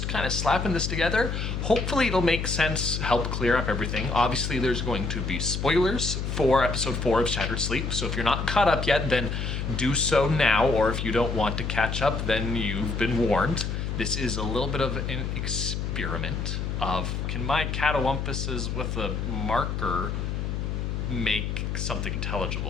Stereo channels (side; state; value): left; noise; hum, 2 dB below the sound